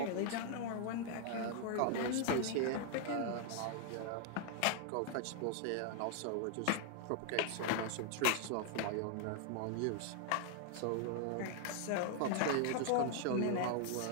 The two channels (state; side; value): different; both; correlation 0.00